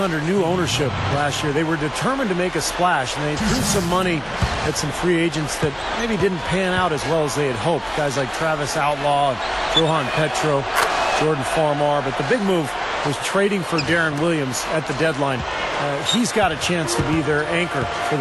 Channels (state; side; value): identical; both; correlation 1.00